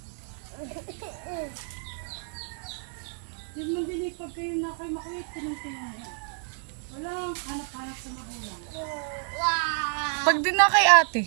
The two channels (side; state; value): left; silent; 57 dB below the other